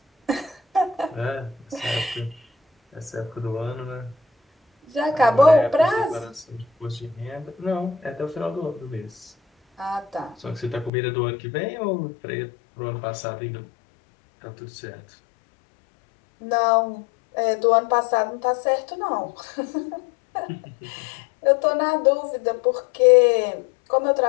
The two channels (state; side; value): drops out; right; at 10.9 s